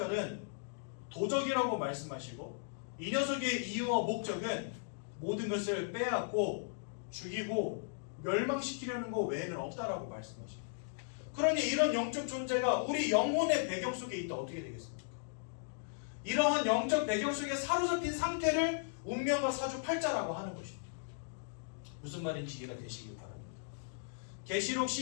도적이라고 말씀하시고, 이 녀석의 이유와 목적은 모든 것을 빼앗고 죽이고 멸망시키려는 것 외에는 없다라고 말씀하십니다. 그러니 이런 영적 존재가 우리 영혼의 배경 속에 있다 어떻게 되겠습니까? 이러한 영적 배경 속에 사로잡힌 상태를 운명과 사주팔자라고 하는 것입니다. 무슨 말인지 이해가 되시길 바랍니다. 계시록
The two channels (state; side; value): silent; right; digital silence